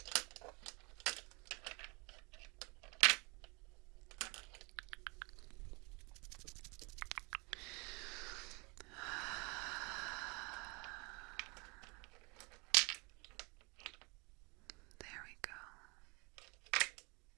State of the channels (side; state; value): left; quieter; 29.2 dB